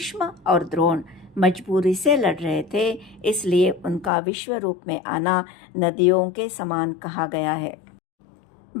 और द्रोण मजबूरी से लड़ रहे थे, इसलिए उनका विश्व रूप में आना नदियों के समान कहा गया है।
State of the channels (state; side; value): drops out; right; at 4.1 s